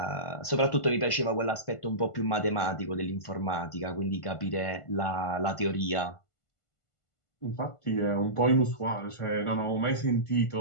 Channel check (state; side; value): late; right; 1.5 ms